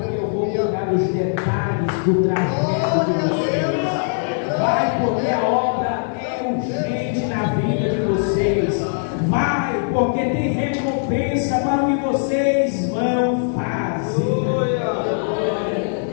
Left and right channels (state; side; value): silent; right; digital silence